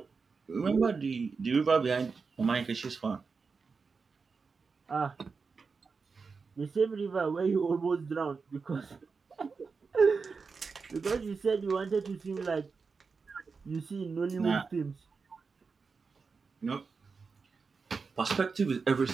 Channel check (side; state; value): left; quieter; 4.9 dB